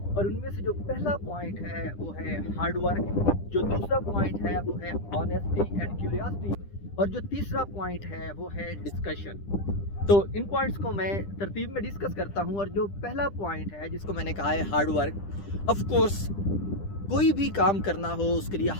और उनमें से जो पहला पॉइंट है वो है हार्ड वर्क, जो दूसरा पॉइंट है वो है ऑनेस्टी एंड क्यूरियोसिटी, और जो तीसरा पॉइंट है वो है डिस्कशन। तो इन पॉइंट्स को मैं तरतीब में डिस्कस करता हूँ। और जो पहला पॉइंट है जिसको मैंने कहा है हार्ड वर्क, ऑफ कोर्स कोई भी काम करना हो उसके लिए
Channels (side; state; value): right; late; 10 ms